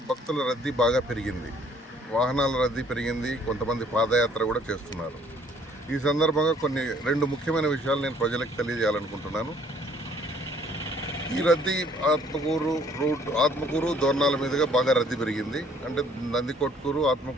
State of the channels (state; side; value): normal; both; correlation 0.60